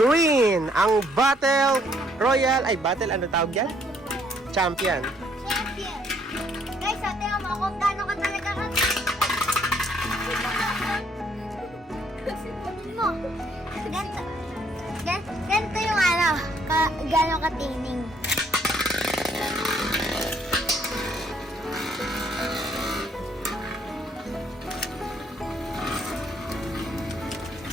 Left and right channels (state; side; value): normal; both; correlation 0.67